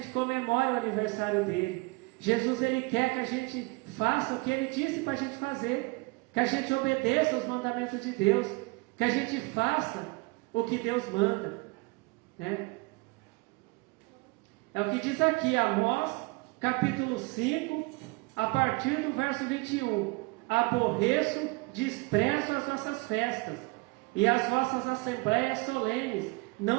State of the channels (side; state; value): left; quieter; 26.9 dB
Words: comemore o aniversário dele. Jesus ele quer que a gente faça o que ele disse para a gente fazer, que a gente obedeça os mandamentos de Deus, que a gente faça o que Deus manda. É o que diz aqui, Amós, capítulo 5, a partir do verso 21. Aborreço, desprezo as vossas festas, e as vossas assembleias solenes